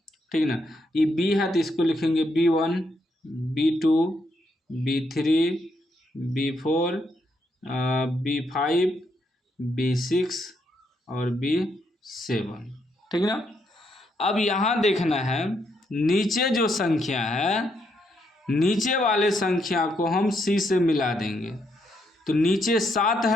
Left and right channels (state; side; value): normal; both; correlation 0.77